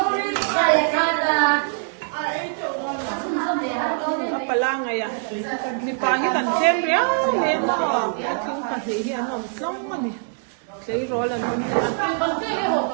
apa lang ay mi pahi kan tem ria le mo ting pa hi hi anom tlong ani sei rol anom le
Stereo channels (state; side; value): silent; left; 63 dB below the other